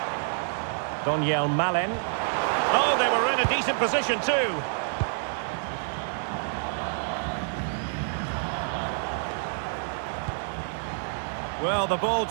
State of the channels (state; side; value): silent; left; 60 dB below the other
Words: Daniel Malen. Oh, they were in a decent position too. Well, the ball